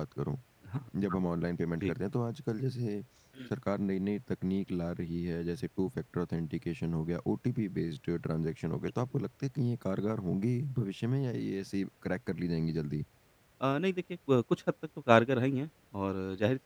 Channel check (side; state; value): both; identical; correlation 1.00